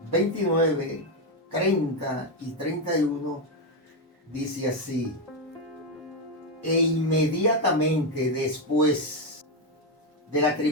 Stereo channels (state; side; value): normal; both; correlation 0.06